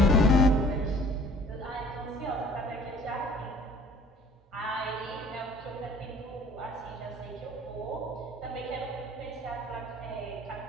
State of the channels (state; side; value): normal; both; correlation 0.51